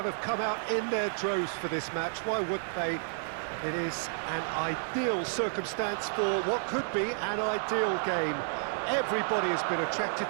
have come out in their droves for this match. Why wouldn't they? It is an ideal circumstance for what could be an ideal game. Everybody has been attracted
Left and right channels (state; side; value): silent; left; 57 dB below the other